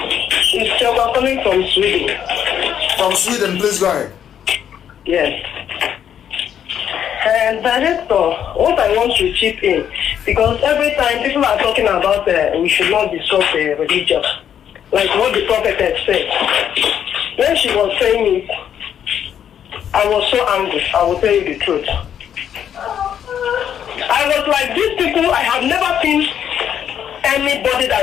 It's Selma calling from Sweden. From Sweden, please go ahead. Yes. And Director, what I want to chip in, because every time people are talking about we should not discuss religion, like what the prophetess said. When she was saying it, I was so angry. I will tell you the truth. I was like, these people, I have never seen anybody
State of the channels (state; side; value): quieter; right; 9.2 dB